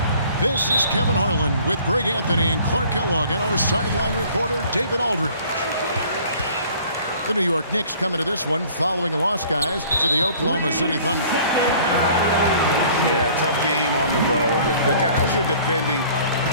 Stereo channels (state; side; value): inverted; both; correlation -0.52